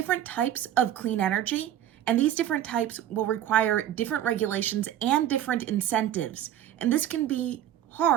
types of clean energy, and these different types will require different regulations and different incentives. And this can be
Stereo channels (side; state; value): left; quieter; 11.3 dB